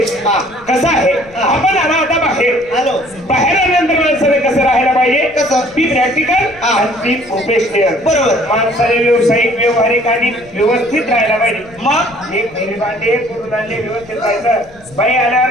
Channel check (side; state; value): left; noise; rumble, 24 dB below the sound